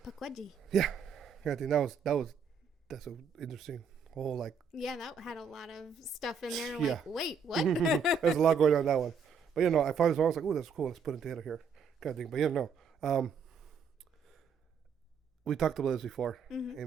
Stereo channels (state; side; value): quieter; left; 5.7 dB